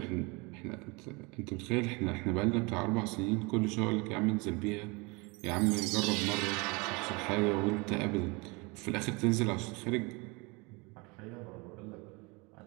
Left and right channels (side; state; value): left; quieter; 27.4 dB